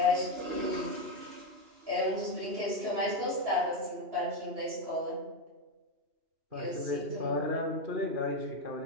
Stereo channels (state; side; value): late; left; 2.9 ms